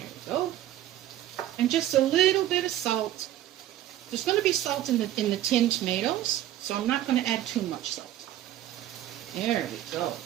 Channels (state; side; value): quieter; left; 12.9 dB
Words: we go. And just a little bit of salt. There's going to be salt in the tinned tomatoes, so I'm not going to add too much salt. There we go.